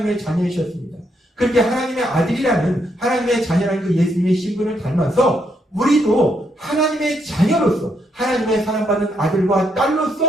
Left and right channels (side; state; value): both; normal; correlation 0.77